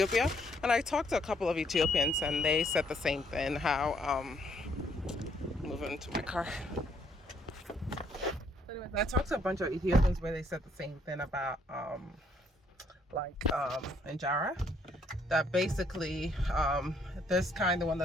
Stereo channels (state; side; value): normal; both; correlation 0.68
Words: and I talked to a couple of Ethiopians, and they said the same thing. How moving into my car. Anyways, I talked to a bunch of Ethiopians where they said the same thing about injera, that basically this kind, the one